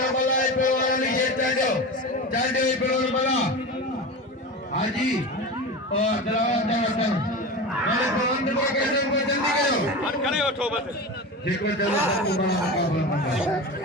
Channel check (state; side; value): normal; both; correlation 0.27